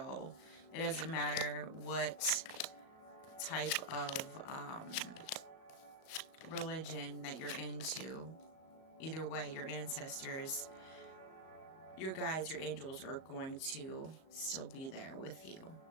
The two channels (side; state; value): right; late; 37 ms